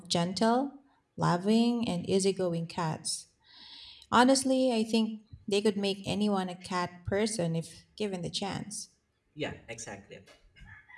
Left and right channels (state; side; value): identical; both; correlation 1.00